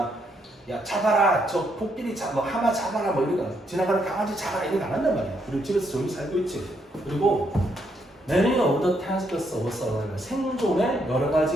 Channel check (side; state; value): both; normal; correlation 0.75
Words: 야, 잡아라, 저 코끼리 뭐 하마 잡아라, 뭐 이런 거 지나가는 강아지 잡아라 이런 거 안 한단 말이야. 그리고 집에서 조용히 살고 있지. 그리고 Many of the tasks of survival, 생존의 여러